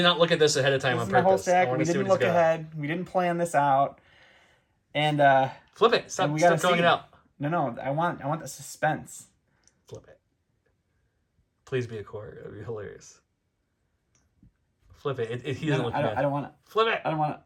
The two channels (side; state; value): both; identical; correlation 1.00